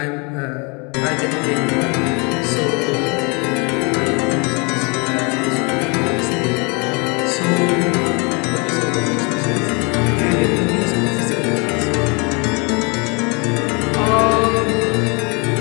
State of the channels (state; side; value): quieter; right; 31.6 dB